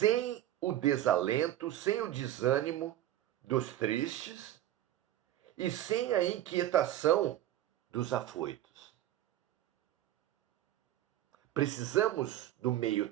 o desalento, sem o desânimo dos tristes e sem a inquietação dos afoitos. Precisamos do meio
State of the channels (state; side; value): quieter; left; 13.0 dB